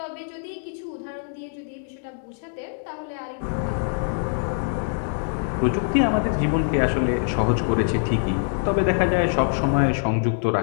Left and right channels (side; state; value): right; silent; digital silence